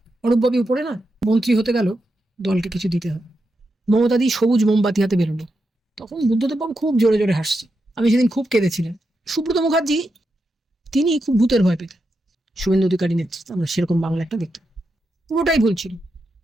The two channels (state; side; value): normal; both; correlation 0.86